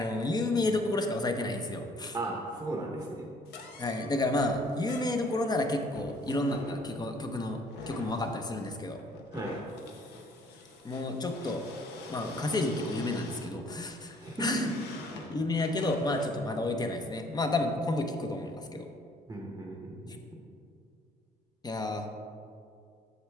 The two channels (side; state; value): both; normal; correlation 0.60